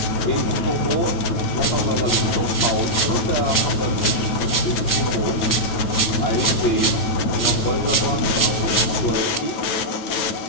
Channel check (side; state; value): right; late; 9.2 ms